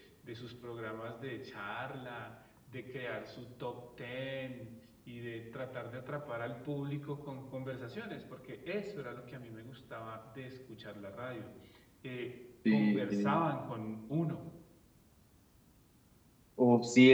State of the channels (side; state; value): both; identical; correlation 1.00